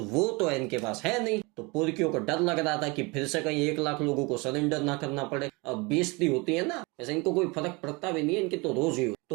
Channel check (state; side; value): quieter; left; 26.8 dB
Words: वो तो इनके पास है नहीं। तो पुरकियों को डर लग रहा था कि फिर से कहीं 1 लाख लोगों को सरेंडर ना करना पड़े। अब बेइज्जती होती है ना, वैसे इनको कोई फर्क पड़ता भी नहीं है, इनकी तो रोज ही हो।